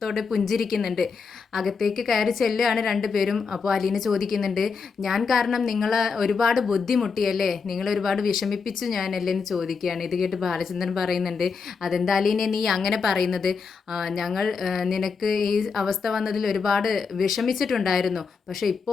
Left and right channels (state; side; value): quieter; right; 5.3 dB